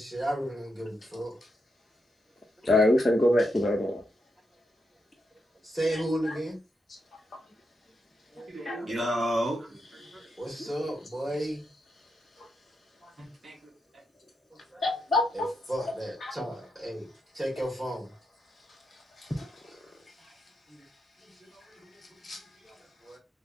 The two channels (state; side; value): normal; both; correlation 0.84